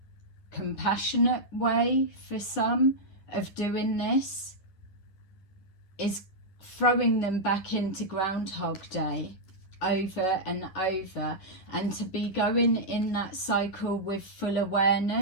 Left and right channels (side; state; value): right; late; 11 ms